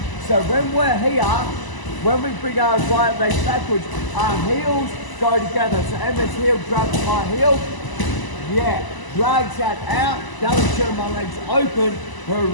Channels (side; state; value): right; late; 1.0 ms